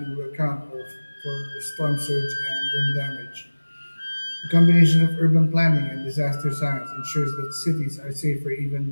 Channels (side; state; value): both; inverted; correlation -1.00